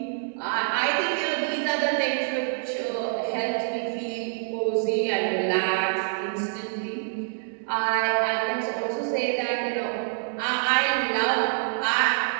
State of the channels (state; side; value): silent; left; 61 dB below the other